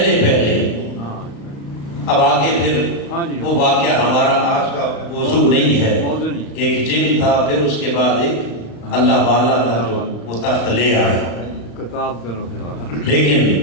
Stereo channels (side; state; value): right; late; 36 ms